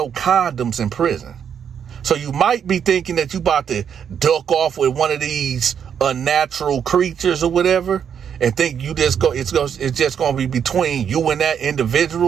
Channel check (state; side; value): quieter; left; 8.0 dB